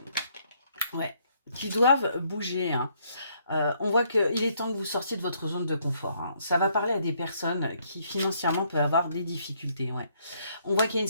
ouais, qui doivent bouger, hein. On voit qu'il est temps que vous sortiez de votre zone de confort, hein. Ça va parler à des personnes qui financièrement peuvent avoir des difficultés. Ouais. On voit qu'il y a une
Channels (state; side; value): inverted; both; correlation -0.69